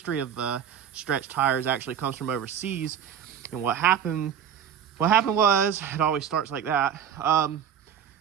of stretched tires actually comes from overseas. And what happened was, it always starts like that.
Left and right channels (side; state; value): left; quieter; 8.7 dB